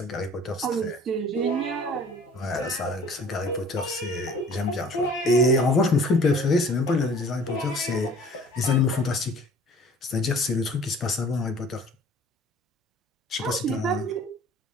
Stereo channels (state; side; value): normal; both; correlation 0.49